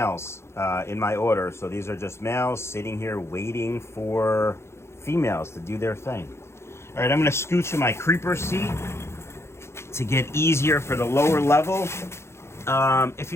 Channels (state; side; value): late; right; 0.13 ms